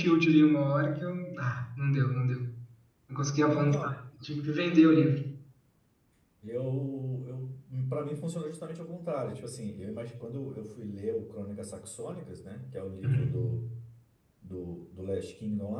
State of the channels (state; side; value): identical; both; correlation 1.00